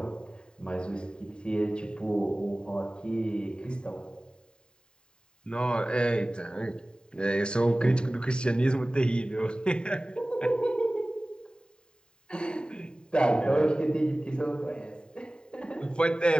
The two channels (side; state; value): right; late; 0.049 ms